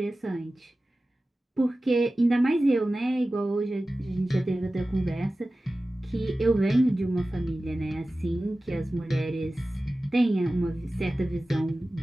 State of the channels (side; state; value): both; normal; correlation 0.96